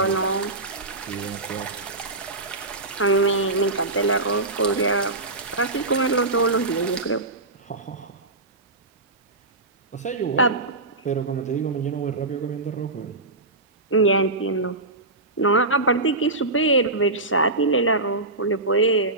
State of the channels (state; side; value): quieter; left; 3.1 dB